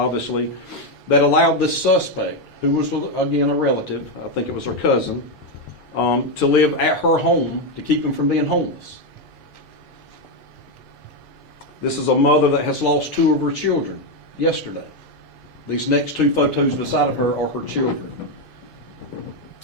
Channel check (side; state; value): right; late; 2.6 ms